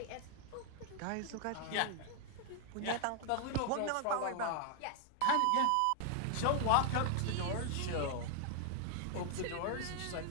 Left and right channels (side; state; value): both; different; correlation 0.00